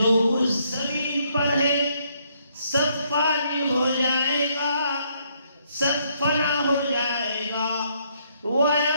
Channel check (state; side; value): inverted; both; correlation -0.71